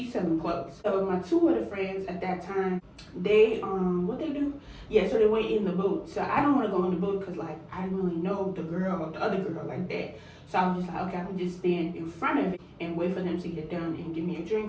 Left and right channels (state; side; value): identical; both; correlation 1.00